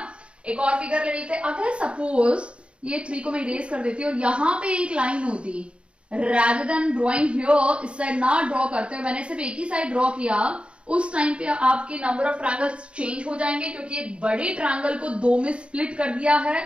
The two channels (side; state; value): left; late; 0.058 ms